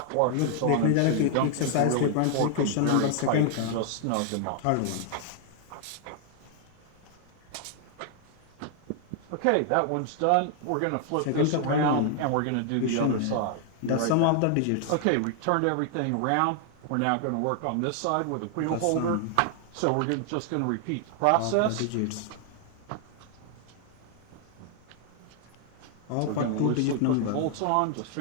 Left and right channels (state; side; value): different; both; correlation 0.00